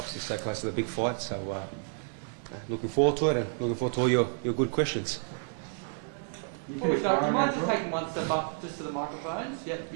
stay close to the big fight, so looking forward to it and looking forward to all your good questions. Before we start, do you mind just taking one step up just to the microphones? Yep,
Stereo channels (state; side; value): silent; left; 58 dB below the other